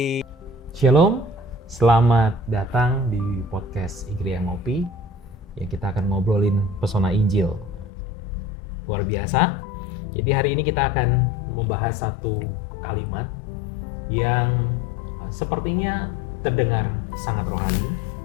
Shalom, selamat datang di podcast Igria Ngopi. Ya, kita akan ngobrolin pesona Injil. Luar biasa. Jadi hari ini kita akan membahas satu kalimat yang sepertinya terdengar sangat rohani.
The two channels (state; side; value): drops out; right; at 7.9 s